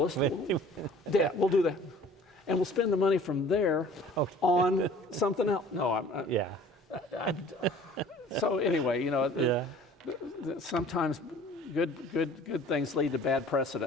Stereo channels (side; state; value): both; normal; correlation 0.49